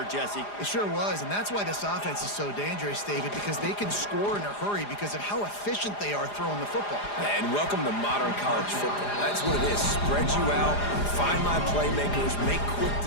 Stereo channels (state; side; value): late; right; 4.9 ms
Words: Jesse. It sure was, and that's why this offense is so dangerous, David, because they can score in a hurry because of how efficient they are throwing the football. And welcome to modern college football. That's what it is. Spread you out, find my playmakers, make quick